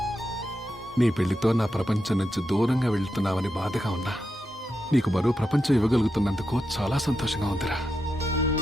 నీ పెళ్లితో నా ప్రపంచం నుంచి దూరంగా వెళ్తున్నావని బాధగా ఉన్నా నీకు మరో ప్రపంచం ఇవ్వగలుగుతున్నందుకు చాలా సంతోషంగా ఉందిరా.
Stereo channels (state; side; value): normal; both; correlation 0.87